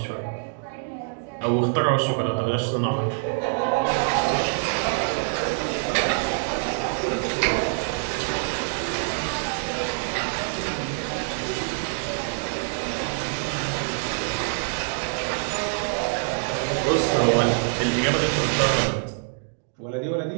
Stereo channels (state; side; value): silent; left; digital silence